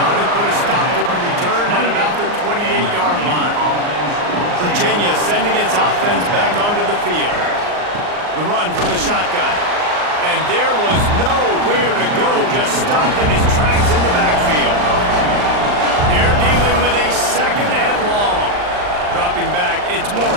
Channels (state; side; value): late; left; 39 ms